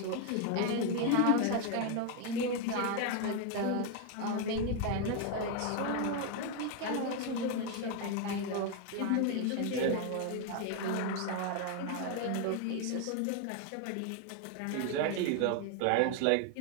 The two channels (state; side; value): different; both; correlation 0.01